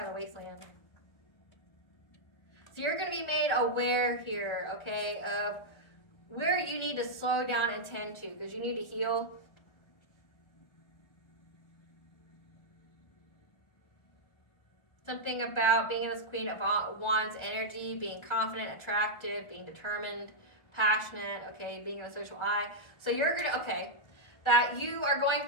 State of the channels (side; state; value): right; late; 1.4 ms